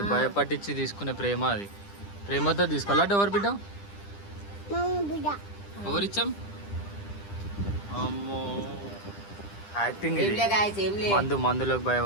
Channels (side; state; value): right; late; 10 ms